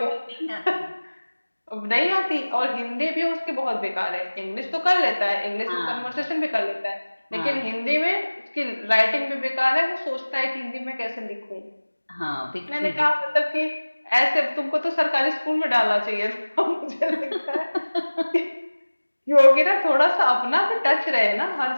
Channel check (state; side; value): inverted; both; correlation -1.00